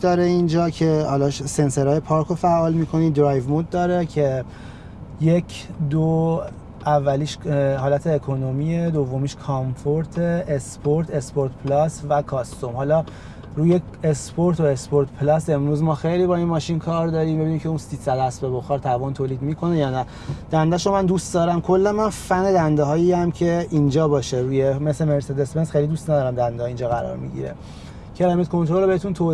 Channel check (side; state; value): both; identical; correlation 1.00